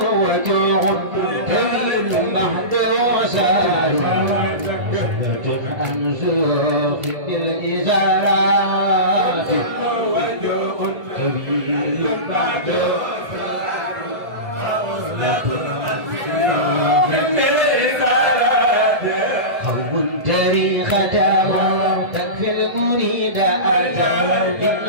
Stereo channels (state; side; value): late; left; 1.3 ms